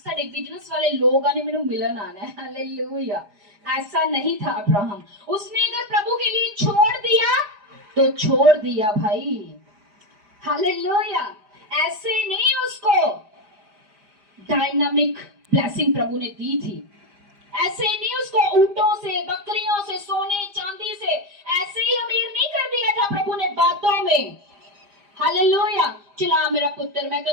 बिजनेस वाले लोग आने, मेनू मिलन आना है। हालेलुया। ऐसा नहीं था अब्राहम। उसने अगर प्रभु के लिए छोड़ दिया तो छोड़ दिया भाई। हालेलुया। ऐसे नहीं उसको डायनामिक ब्लेसिंग प्रभु ने दी थी। ऐसे नहीं उसको ऊंटों से, बकरियों से, सोने चांदी से ऐसे ही अमीर नहीं कर दिया था प्रभु ने बातों में। हालेलुया। चला मेरा पुत्र, मैं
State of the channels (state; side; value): late; left; 4.9 ms